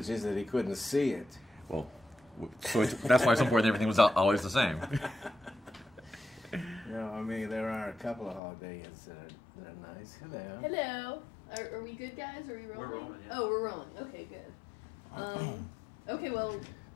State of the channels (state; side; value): drops out; right; at 8.4 s